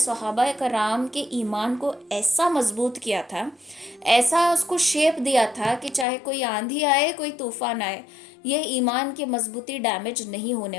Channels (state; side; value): drops out; right; at 6.1 s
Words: کرام کے ایمان کو ایسا مضبوط کیا تھا، ایسا اس کو شیپ دیا تھا کہ چاہے کوئی آندھی آئے، کوئی طوفان آئے، یہ ایمان کی مضبوطی ڈیمیج نہیں